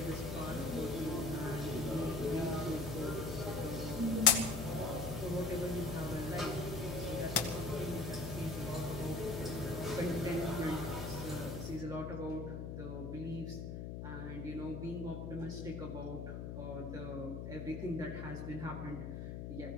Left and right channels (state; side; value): noise; left; hum, 5 dB below the sound